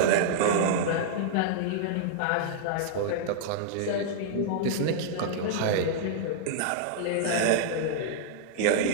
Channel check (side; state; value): both; different; correlation -0.01